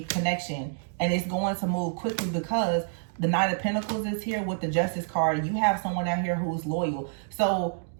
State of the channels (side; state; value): left; silent; digital silence